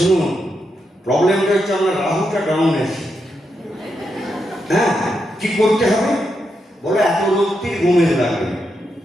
প্রবলেমটা হচ্ছে আমার রাহুটা ডাউন আছে। হ্যাঁ, কি করতে হবে? বলে এত রক্তির গোমেজ লাগবে।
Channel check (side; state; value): both; normal; correlation 0.84